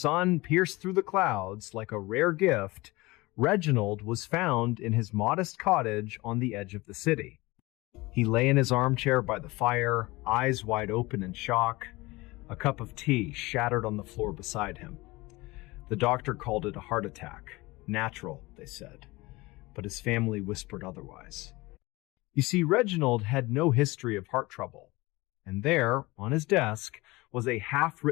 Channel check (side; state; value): right; quieter; 21.8 dB